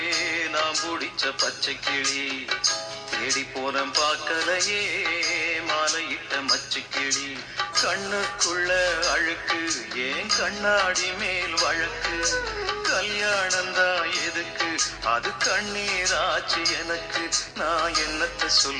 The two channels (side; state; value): both; identical; correlation 1.00